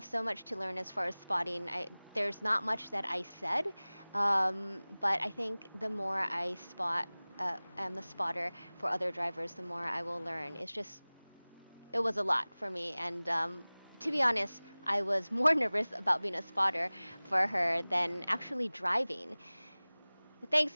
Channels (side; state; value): both; inverted; correlation -1.00